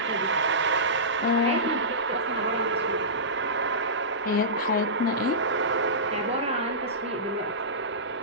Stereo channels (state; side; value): normal; both; correlation -0.19